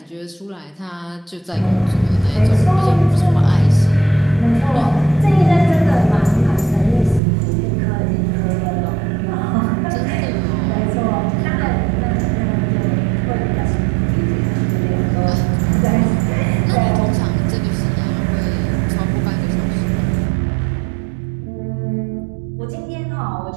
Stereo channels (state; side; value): drops out; left; at 7.2 s